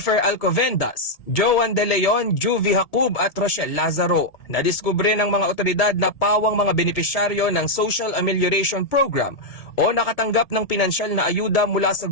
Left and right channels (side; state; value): right; late; 1.7 ms